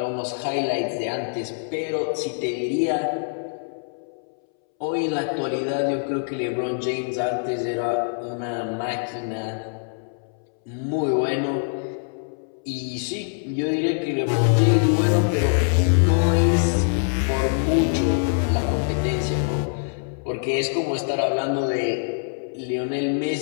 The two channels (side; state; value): right; silent; 63 dB below the other